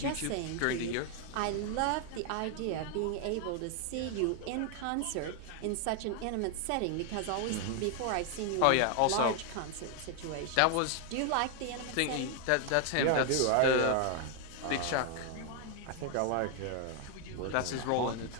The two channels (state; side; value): different; both; correlation 0.00